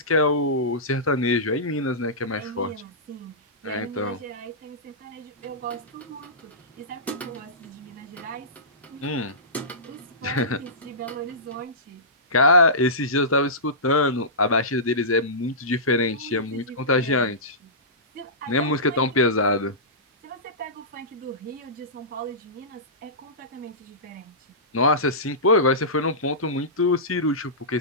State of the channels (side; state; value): both; normal; correlation -0.19